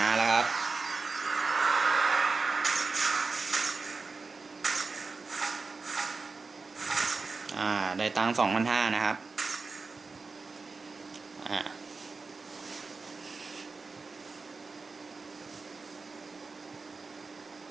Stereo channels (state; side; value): quieter; left; 4.2 dB